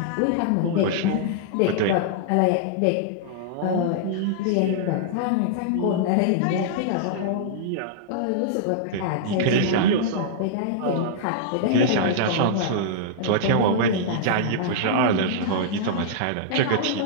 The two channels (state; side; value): different; both; correlation -0.02